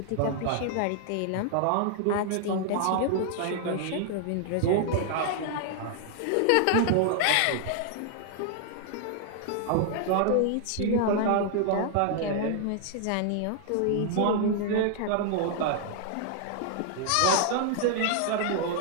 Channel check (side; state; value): both; different; correlation 0.00